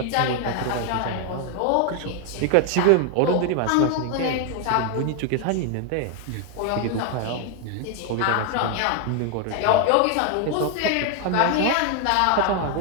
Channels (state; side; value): different; both; correlation 0.01